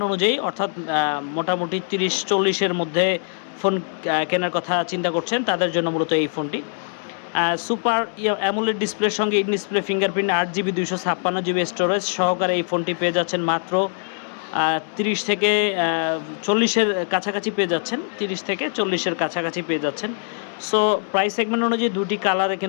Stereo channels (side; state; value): right; silent; digital silence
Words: অনুযায়ী অর্থাৎ মোটামুটি 30-40-এর মধ্যে ফোন কেনার কথা চিন্তা করছেন, তাদের জন্য মূলত এই ফোনটি। সুপার অ্যামোলেড ডিসপ্লের সঙ্গে in display fingerprint 8GB 256GB storage সহকারে এই ফোনটি পেয়ে যাচ্ছেন মাত্র 30 থেকে 40-এর কাছাকাছি পেয়ে যাচ্ছেন। 30 থেকে 40-এর কাছাকাছি পেয়ে যাচ্ছেন। সো প্রাইস সেগমেন্ট অনুযায়ী দুটি কালারে